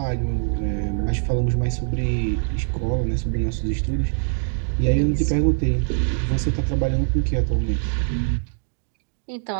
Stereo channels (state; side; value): silent; left; digital silence